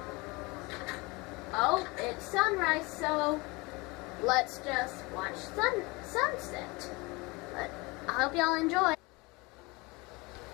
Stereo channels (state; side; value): quieter; right; 25.2 dB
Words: Oh, it's sunrise, so let's just watch sunset. But I hope y'all enjoy.